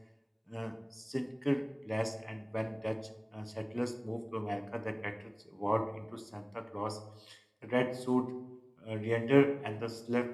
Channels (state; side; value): identical; both; correlation 1.00